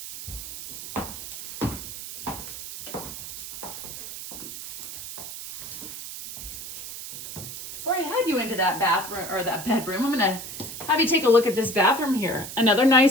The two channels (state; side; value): noise; right; hiss, 10 dB below the sound